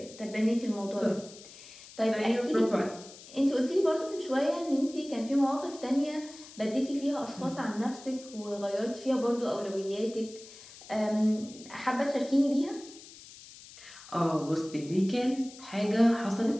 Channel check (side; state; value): left; noise; hiss, 18 dB below the sound